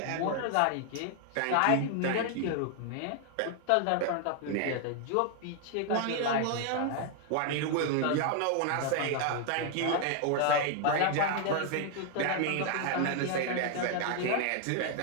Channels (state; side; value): different; both; correlation 0.00